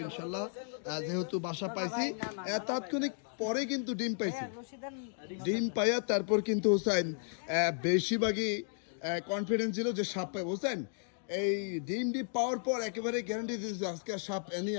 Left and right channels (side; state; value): right; silent; digital silence